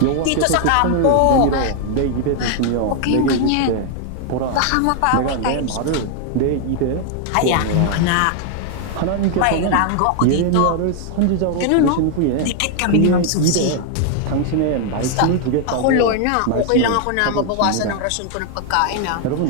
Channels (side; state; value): both; different; correlation 0.00